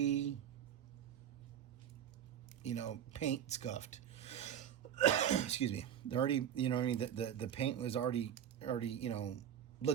paint scuffed. Excuse me. They're already, the paint was already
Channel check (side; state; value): left; quieter; 9.5 dB